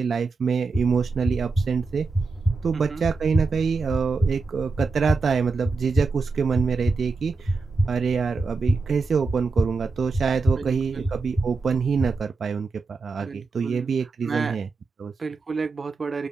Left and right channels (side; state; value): left; quieter; 4.3 dB